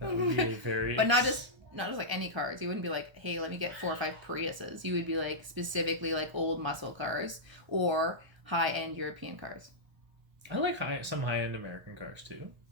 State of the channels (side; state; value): left; late; 1.3 ms